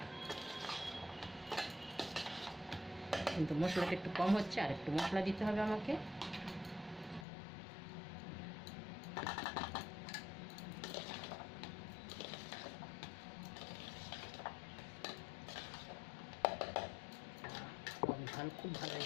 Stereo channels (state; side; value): drops out; right; at 7.2 s